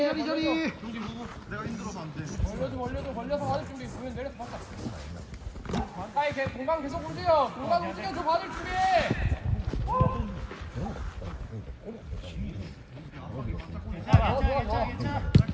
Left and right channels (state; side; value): identical; both; correlation 1.00